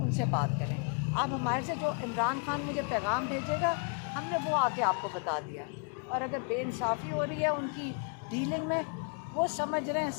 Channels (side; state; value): right; quieter; 39.6 dB